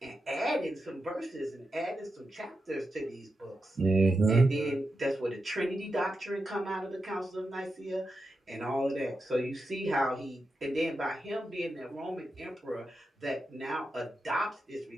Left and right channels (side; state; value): both; normal; correlation 0.88